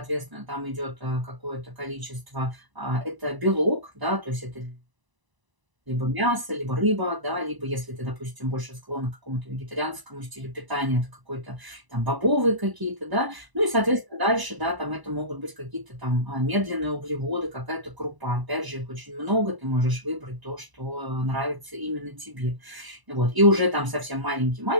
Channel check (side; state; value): left; late; 1.0 ms